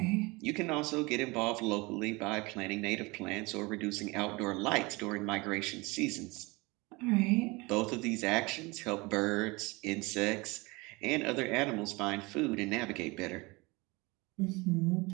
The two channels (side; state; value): left; quieter; 24.7 dB